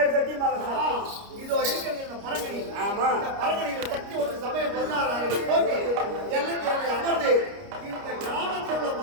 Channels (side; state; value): left; late; 29 ms